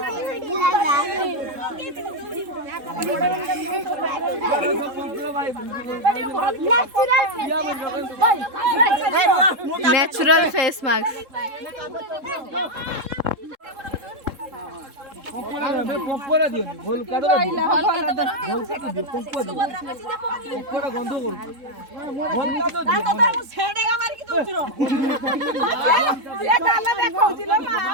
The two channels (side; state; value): left; late; 3.7 ms